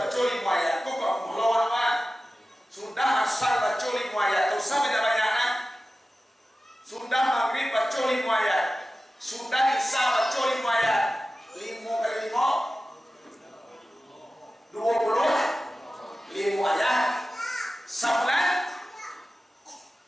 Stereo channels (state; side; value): normal; both; correlation 0.95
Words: 5 ayat. Kok melawan sudah asar baca 5 ayat. Tak usah banyak-banyak kan? Sudah maghrib baca 5 ayat. Sudah isya baca 5 ayat. 5 kali 5 20 ayat. Sebulan